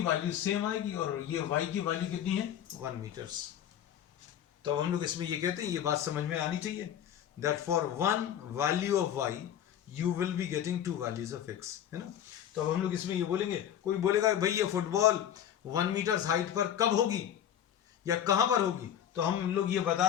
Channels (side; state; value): right; quieter; 10.1 dB